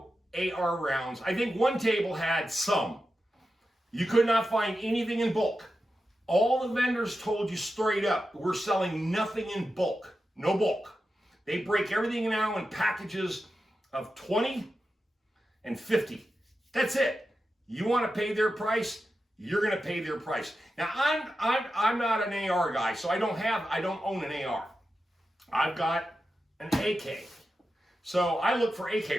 AR rounds. I think one table had some. You could not find anything in bulk. All the vendors told you straight up, we're selling nothing in bulk. No bulk. They break everything now in packages of 20 and 50. That's it. You want to pay their price, you're going to pay their price. Now, I'm not an AR guy, so I don't own an AR. I've got an AK. So I look for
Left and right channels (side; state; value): both; normal; correlation 0.91